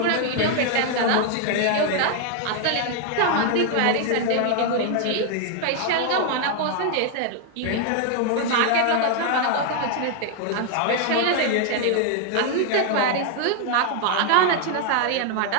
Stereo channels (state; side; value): different; both; correlation 0.00